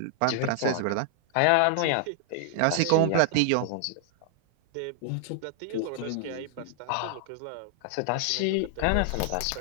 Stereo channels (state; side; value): different; both; correlation 0.00